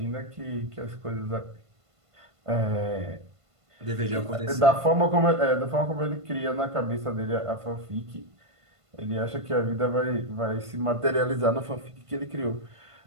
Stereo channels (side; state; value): left; late; 1.5 ms